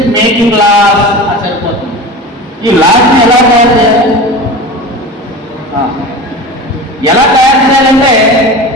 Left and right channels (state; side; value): normal; both; correlation 0.32